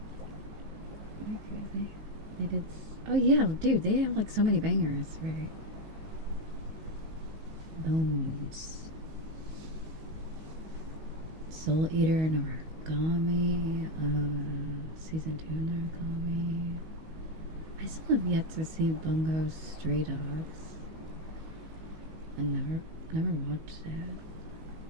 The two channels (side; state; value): left; late; 19 ms